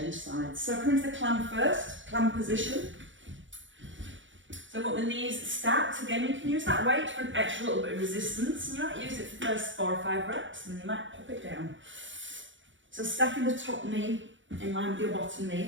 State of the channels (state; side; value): late; left; 0.56 ms